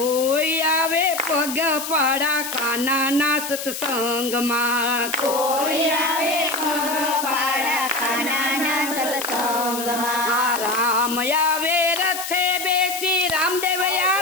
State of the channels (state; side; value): noise; left; hiss, 7 dB below the sound